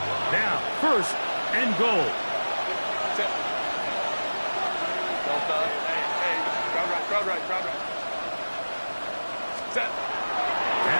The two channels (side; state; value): both; inverted; correlation -1.00